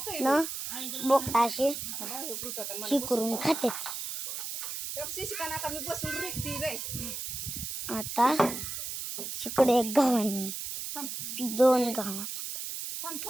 बोकटा असे ही करून खाते. आता इकडे एक गव्हाणे, दोन गव्हाणे.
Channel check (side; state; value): right; noise; hiss, 5 dB below the sound